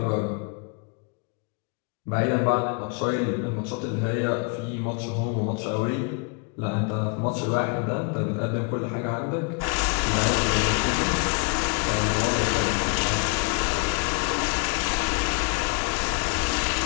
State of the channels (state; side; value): quieter; right; 31.8 dB